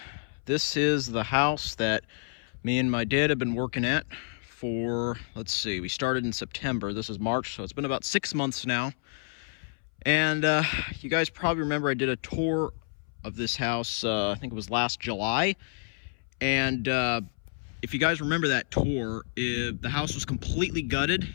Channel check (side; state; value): right; silent; 59 dB below the other